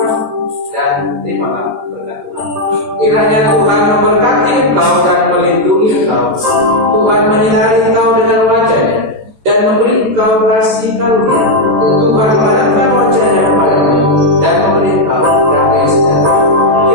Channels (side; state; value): left; late; 13 ms